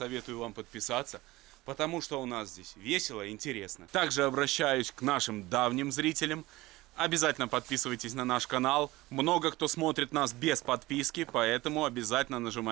вам подписаться, потому что у нас здесь весело и интересно. Также обращаюсь к нашим давним зрителям. Обязательно подписывайтесь на наш канал. Много кто смотрит нас без подписки, поэтому обязательно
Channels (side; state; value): left; quieter; 19.5 dB